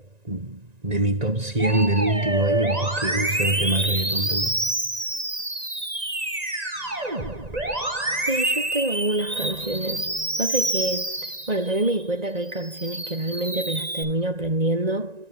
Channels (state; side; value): late; left; 1.9 ms